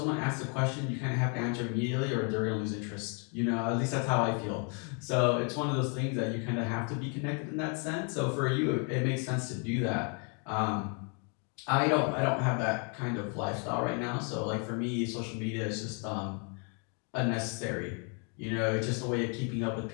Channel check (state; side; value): quieter; right; 38.2 dB